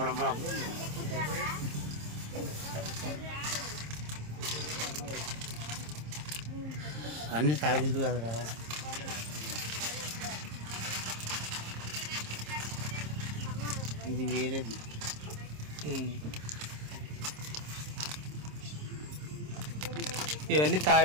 పడబాబు. అన్నీ తాగేది కదరా. ఇది వేరేది. ఇవన్నీ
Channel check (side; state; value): left; late; 26 ms